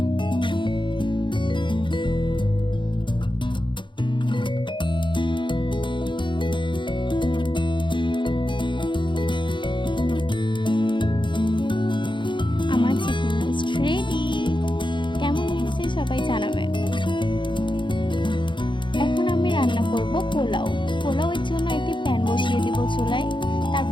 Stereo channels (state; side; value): late; right; 0.23 ms